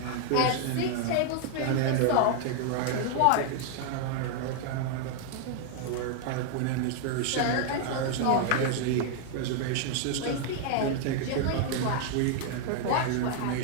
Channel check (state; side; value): different; both; correlation 0.00